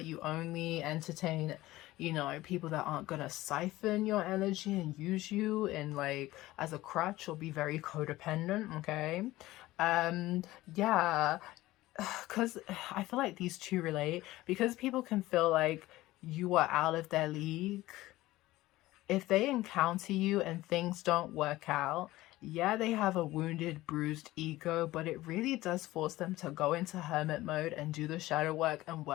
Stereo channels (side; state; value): right; quieter; 17.4 dB